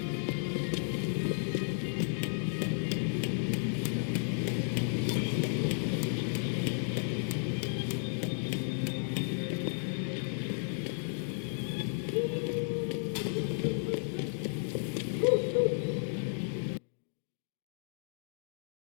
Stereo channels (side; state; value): right; silent; digital silence